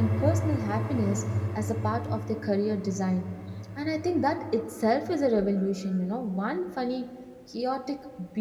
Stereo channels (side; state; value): both; identical; correlation 1.00